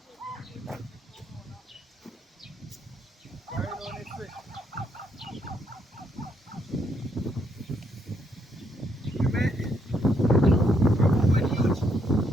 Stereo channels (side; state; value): both; normal; correlation 0.74